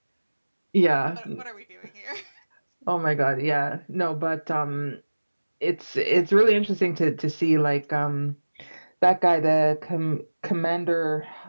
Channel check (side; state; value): both; inverted; correlation -1.00